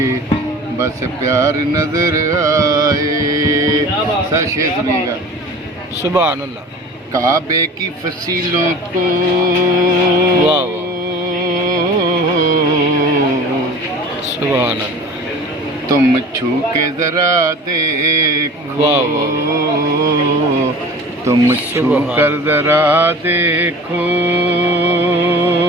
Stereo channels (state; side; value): normal; both; correlation 0.40